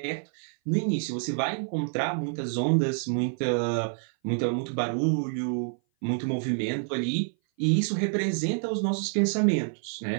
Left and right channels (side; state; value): left; silent; 57 dB below the other